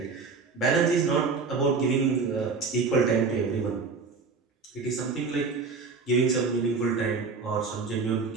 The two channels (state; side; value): quieter; left; 4.6 dB